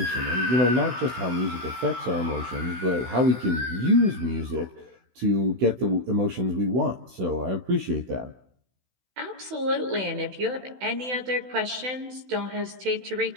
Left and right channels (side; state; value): left; late; 16 ms